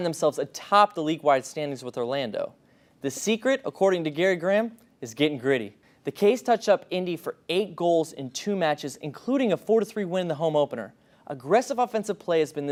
themselves atop the league-wide standings with Orlando. The secret, according to Gary Graham, is getting gritty. The K's touched up Indy for 8 goals in 2 matches, including a 4-3 win in the home opener. Aggressive offensive play has been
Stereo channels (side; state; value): both; identical; correlation 1.00